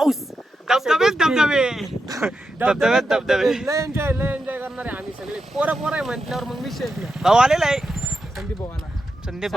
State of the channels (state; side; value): normal; both; correlation 0.87